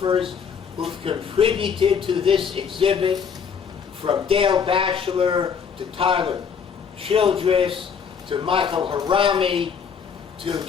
who've contributed to this exhibit, from Dale Batchelor to Tyler Childress to Michael Harami, to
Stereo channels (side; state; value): right; quieter; 6.7 dB